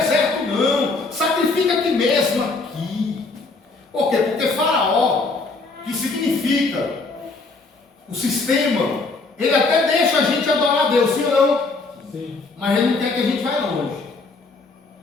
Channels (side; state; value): right; quieter; 3.7 dB